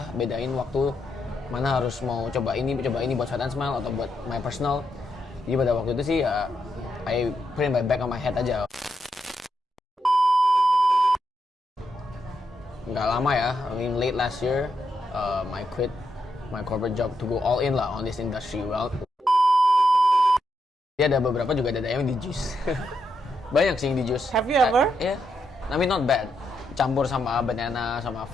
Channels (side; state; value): both; normal; correlation 0.81